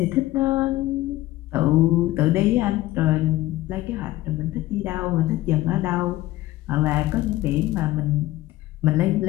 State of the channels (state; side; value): quieter; right; 16.6 dB